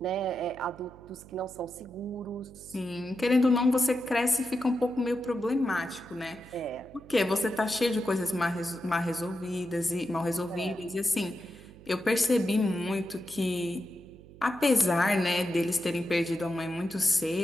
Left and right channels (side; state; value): right; noise; hum, 20 dB below the sound